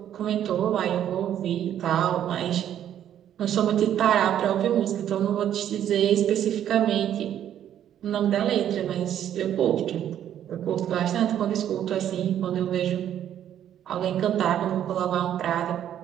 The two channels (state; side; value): quieter; left; 10.5 dB